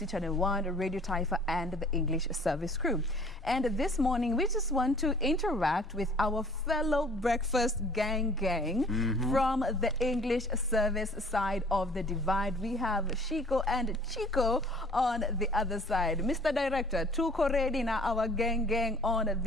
Channel 1, Radio Taifa, and the English service crew. And this morning, we just want to interact with our fellow breakfast gang from the English service side of the divide. We have Shiko and Chico on the other side. Mr. Director, tuko ready na our gang on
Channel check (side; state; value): both; normal; correlation 0.53